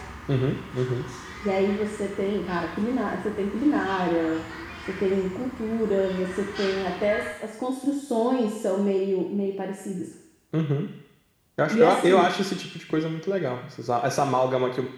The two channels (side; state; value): both; identical; correlation 1.00